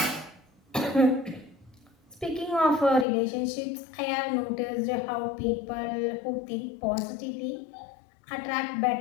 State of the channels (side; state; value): right; drops out; at 3.1 s